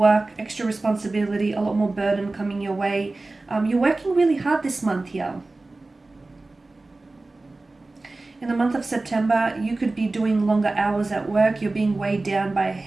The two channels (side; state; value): left; quieter; 3.2 dB